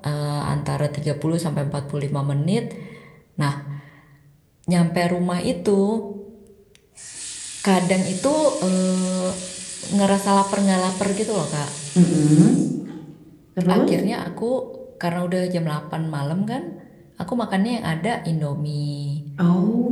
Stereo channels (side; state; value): both; identical; correlation 1.00